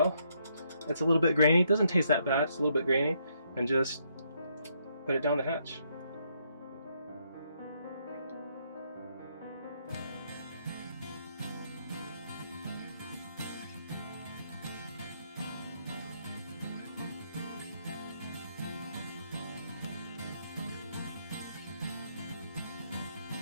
It's a little bit grainy. It doesn't taste that bad. It's a little bit grainy. And just put it down the hatch.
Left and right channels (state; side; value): inverted; both; correlation -0.74